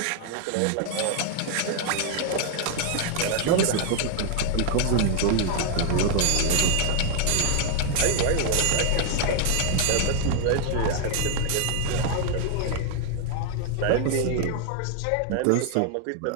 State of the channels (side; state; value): both; different; correlation 0.00